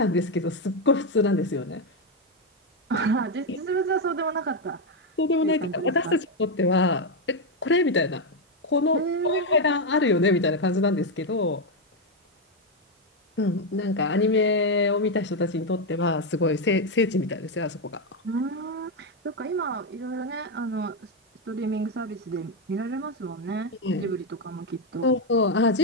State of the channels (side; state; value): both; normal; correlation 0.05